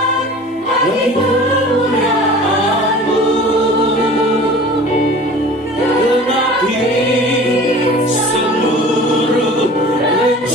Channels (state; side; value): normal; both; correlation 0.42